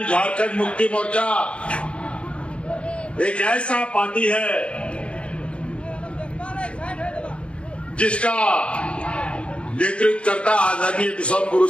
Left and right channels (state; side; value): late; right; 0.059 ms